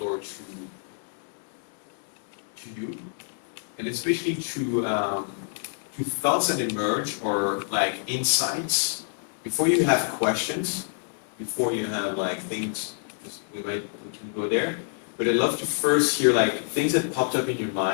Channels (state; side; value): silent; right; digital silence